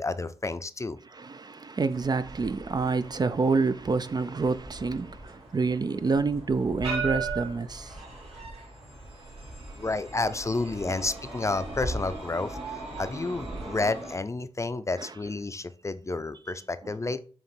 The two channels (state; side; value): normal; both; correlation 0.74